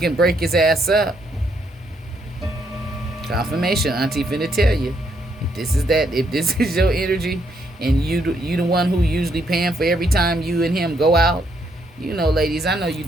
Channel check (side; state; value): both; normal; correlation 0.74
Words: break his ass up. Confirmation, Auntie finna tell you. If this is your energy and you the one who usually paying for every time you and him go out, ladies, I know you